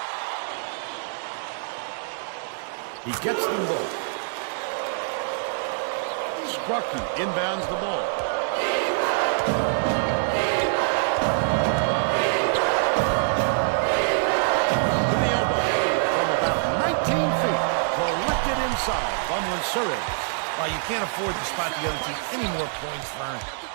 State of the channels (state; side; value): silent; left; 62 dB below the other